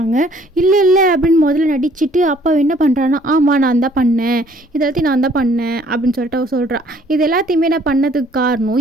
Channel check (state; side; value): normal; both; correlation 0.60